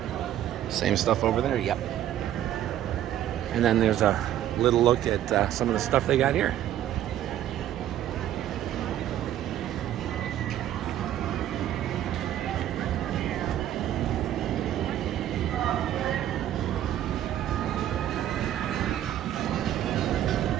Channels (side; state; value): left; quieter; 11.9 dB